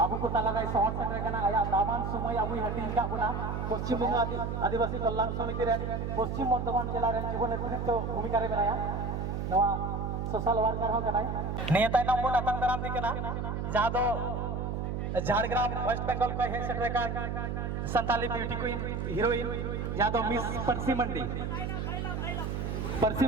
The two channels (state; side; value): noise; right; hum, 2 dB below the sound